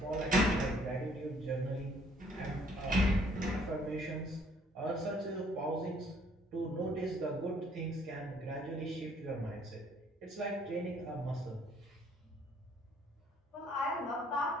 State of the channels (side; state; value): both; normal; correlation 0.62